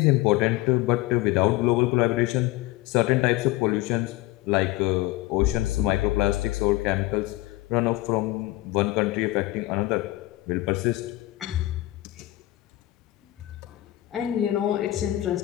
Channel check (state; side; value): quieter; right; 17.7 dB